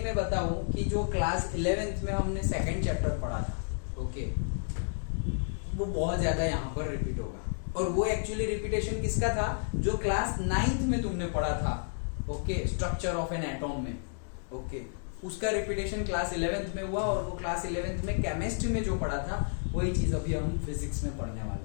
मैं बताऊं कि जो क्लास 11th में हमने सेकंड चैप्टर पढ़ा था, ओके, वो बहुत ज्यादा यहाँ पर रिपीट होगा। और वो एक्चुअली रिपीटेशन किसका था? जो क्लास 9th में तुमने पढ़ा था, okay, structure of an atom में, ओके, उसका रिपीटेशन क्लास 11th में हुआ। और वो क्लास 11th में केमिस्ट्री में जो पढ़ा था वही चीज अभी हम फिजिक्स में पढ़ने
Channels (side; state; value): right; silent; digital silence